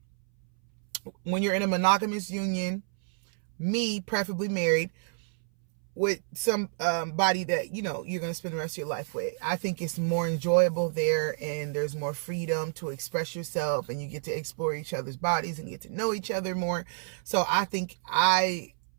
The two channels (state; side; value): silent; left; 59 dB below the other